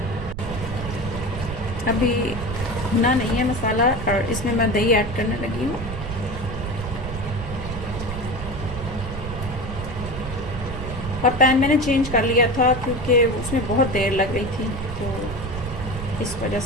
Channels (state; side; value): noise; right; rumble, 7 dB below the sound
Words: अभी भुना नहीं है मसाला और इसमें मैं दही ऐड करने लगी हूँ। और पैन मैंने चेंज कर लिया था क्योंकि उसमें बहुत देर लग रही थी, तो इस वजह